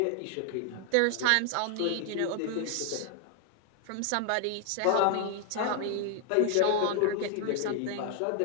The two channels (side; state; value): both; different; correlation 0.00